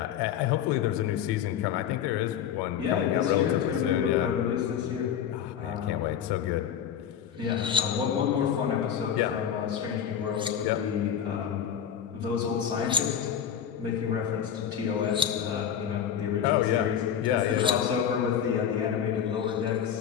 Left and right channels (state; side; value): quieter; right; 8.9 dB